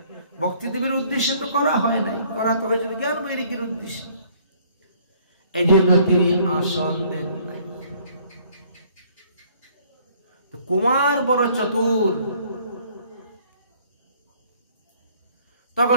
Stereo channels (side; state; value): both; inverted; correlation -0.60